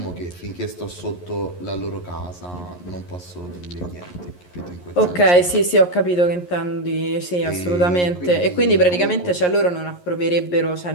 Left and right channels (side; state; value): right; late; 11 ms